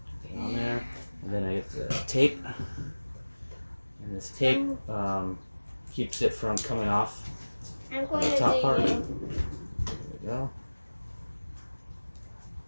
it on there, and then I get the tape, and this tape keeps it from coming off the top part. There we go.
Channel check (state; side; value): inverted; both; correlation -1.00